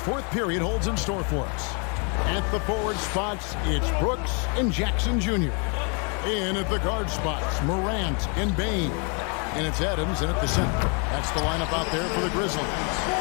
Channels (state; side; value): quieter; right; 36.4 dB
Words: period holds in store for us. At the forward spots, it's Brooks and Jackson Jr. In at the guard spots, Morant and Bane. And it's Adams in at the center. That's the lineup out there for the Grizzlies.